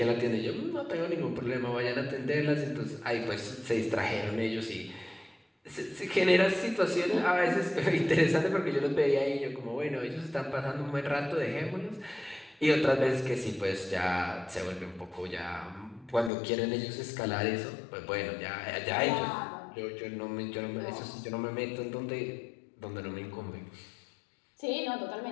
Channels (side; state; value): right; drops out; at 16.3 s